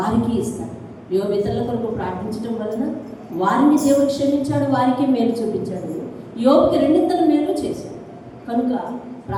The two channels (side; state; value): both; identical; correlation 1.00